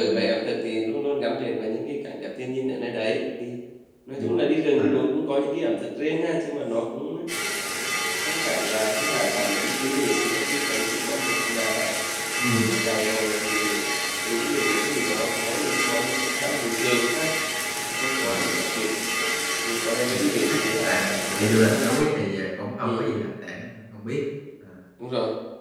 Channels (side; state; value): both; identical; correlation 1.00